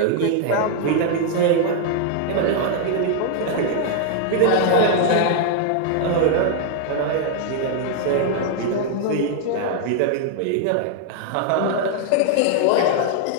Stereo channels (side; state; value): both; different; correlation 0.00